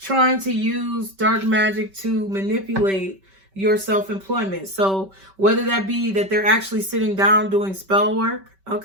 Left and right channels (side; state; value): left; late; 5.2 ms